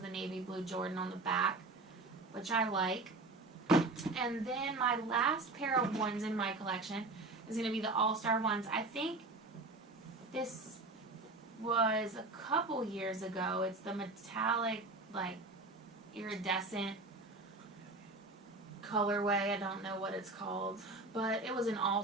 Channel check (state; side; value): quieter; left; 3.2 dB